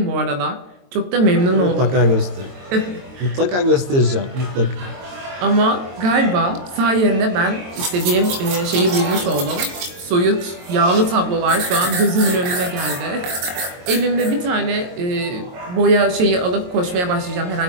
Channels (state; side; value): late; left; 22 ms